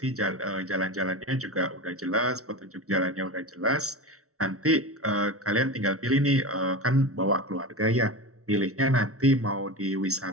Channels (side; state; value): left; late; 0.64 ms